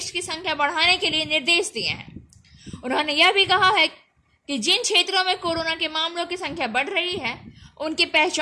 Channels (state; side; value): identical; both; correlation 1.00